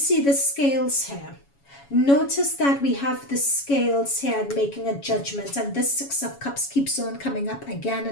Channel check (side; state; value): right; late; 7.2 ms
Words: the scales here? Notice that we have the scales here and making a judgment, and this Six of Cups keeps on coming up again